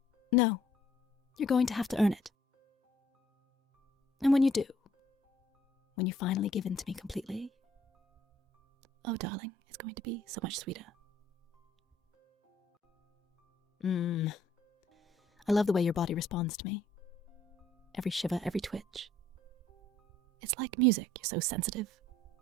No, you're going to have to earn it. And when you do, when you finally give in to me completely, oh, darling, it's going to be so much sweeter. I love the way your body responds to me. Every shiver, every twitch. It's like music. You're so sensitive,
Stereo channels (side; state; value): both; normal; correlation 0.60